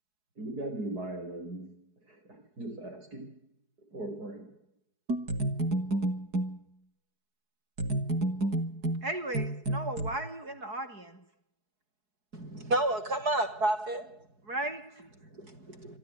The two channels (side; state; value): left; late; 4.7 ms